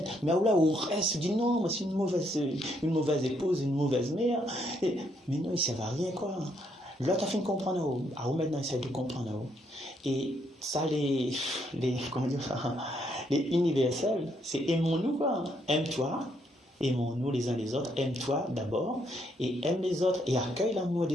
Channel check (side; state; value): both; normal; correlation 0.73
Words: Mais là, on reste, on dit non, moi, c'est une mauvaise épouse, une mauvaise mère. Mais non, il ne sert à rien, quoi. L'autre a fait comprendre à où maintenant, il essaie de comprendre à où. Et ça, les universels, c'est aimons-nous, quoi. Aime-toi, aimons-nous les uns les autres, aime-toi d'abord, et aime les autres, et accueille l'amour